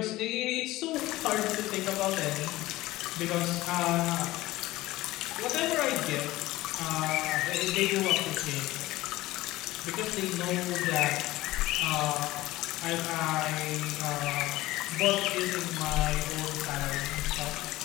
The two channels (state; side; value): quieter; right; 17.8 dB